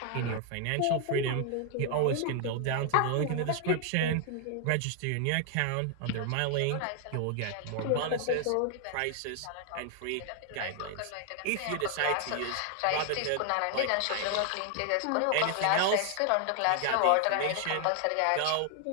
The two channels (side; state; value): both; different; correlation 0.00